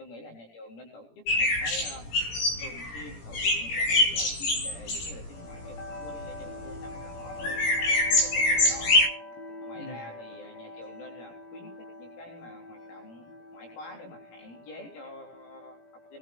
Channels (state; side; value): late; right; 17 ms